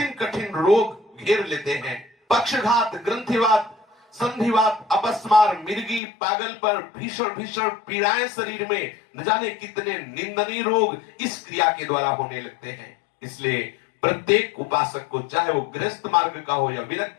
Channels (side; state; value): right; drops out; at 6.0 s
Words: कठिन रोग घेर लेते हैं। पक्षघात, ग्रंथिवात, संधिवात, अपस्मार, मिर्गी, पागल पर, भीषण भीषण पीड़ाएं शरीर में, न जाने कितने निंदनीय रोग इस क्रिया के द्वारा होने लगते हैं। इसलिए प्रत्येक उपासक को, चाहे वो गृहस्थ मार्ग का हो या